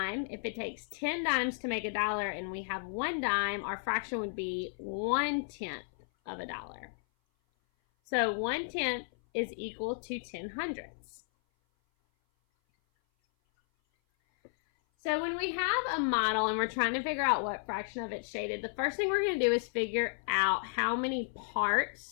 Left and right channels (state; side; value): silent; right; 56 dB below the other